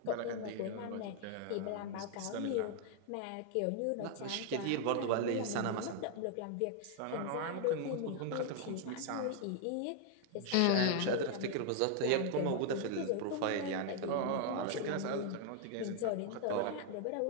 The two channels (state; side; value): different; both; correlation 0.00